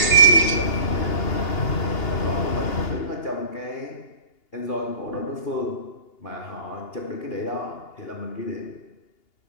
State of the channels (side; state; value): right; late; 2.8 ms